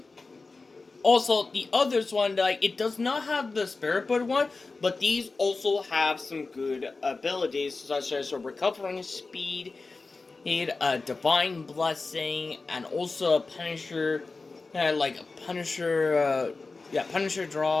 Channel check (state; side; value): quieter; right; 3.8 dB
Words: Also, the others one, like, it does not have the Spirit Bird one, but these also have some good abilities, such as a recovering speed, a divine blessing, and also a Punisher, Punisher